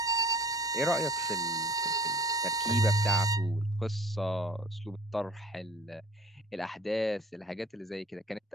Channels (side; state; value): both; normal; correlation 0.51